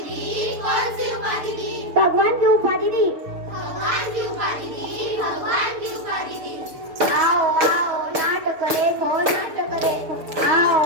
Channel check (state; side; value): late; left; 6.7 ms